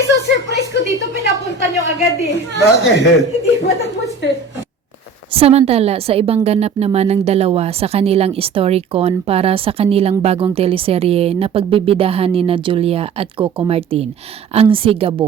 ko dito, pinapunta niyo agad eh. Bakit? Hindi ba tapos eh? Samantala, sa ibang ganap naman ng dalawa sa kanilang Storycon para sa kanilang bagong teleserye na pagbibidahan ni na Julia at Coco Martin, ang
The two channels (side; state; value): left; quieter; 5.0 dB